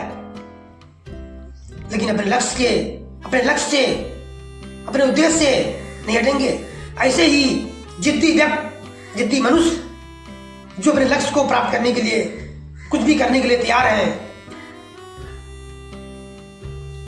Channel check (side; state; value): both; identical; correlation 1.00